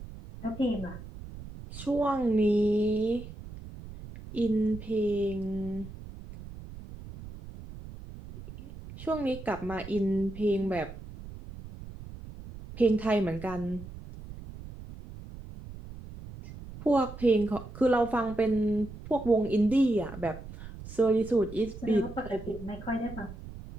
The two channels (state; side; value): noise; right; rumble, 14 dB below the sound